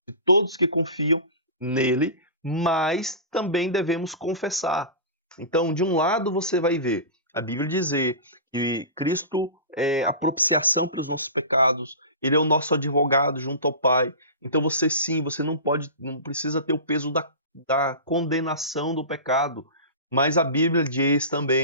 de todos que confiam nele, mas também devemos confessar. Então, de um lado você vai ver a Bíblia dizer que Cristo é a propiciação para os nossos pecados, ele é o nosso advogado junto ao Pai. Então você sim, você não precisa ter o peso da condenação do pecado. Mas a Bíblia diz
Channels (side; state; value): both; inverted; correlation -0.31